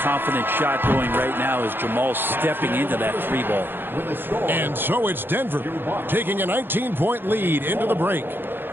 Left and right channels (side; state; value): left; late; 0.10 ms